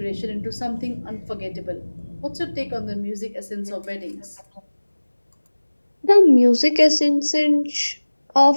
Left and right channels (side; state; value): both; inverted; correlation -1.00